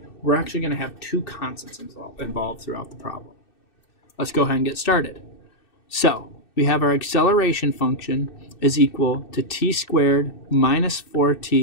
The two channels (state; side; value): late; right; 2.6 ms